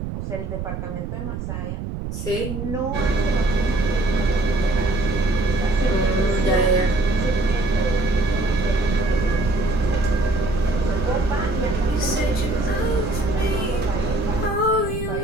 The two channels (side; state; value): right; noise; rumble, 6 dB below the sound